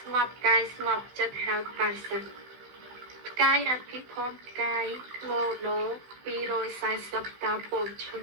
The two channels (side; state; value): left; late; 15 ms